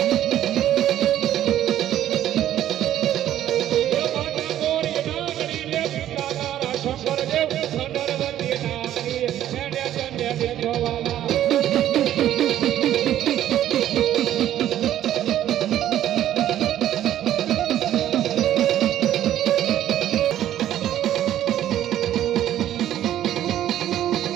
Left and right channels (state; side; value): quieter; left; 12.0 dB